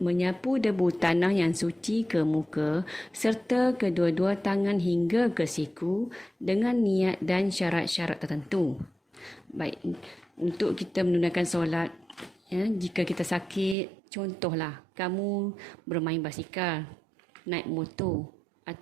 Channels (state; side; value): drops out; left; at 13.8 s